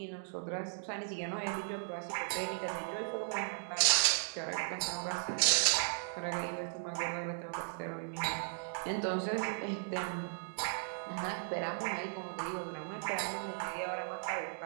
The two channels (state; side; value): silent; left; digital silence